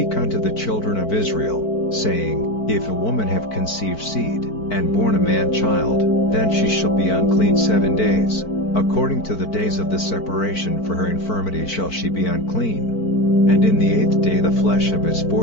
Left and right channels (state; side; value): late; right; 4.5 ms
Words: unto the children of Israel, saying, If a woman have conceived seed, and born a man child, then she shall be unclean 7 days. According to the days of the separation for her infirmity shall she be unclean. And in the 8th day the flesh of his